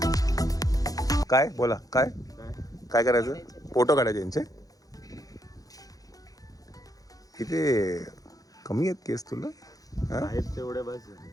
काय बोला काय काय करायचं. फोटो काढायचे यांचे. किती कमी आहेत केस तुला.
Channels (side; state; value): right; late; 0.17 ms